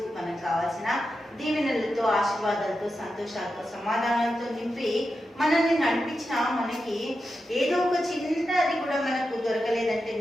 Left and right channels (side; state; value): both; normal; correlation 0.89